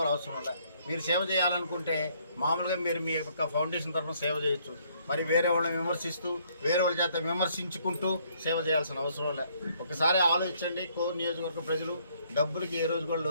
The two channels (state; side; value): inverted; both; correlation -0.66